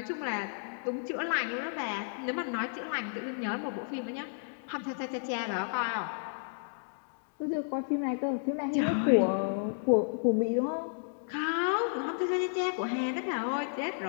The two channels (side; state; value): right; silent; digital silence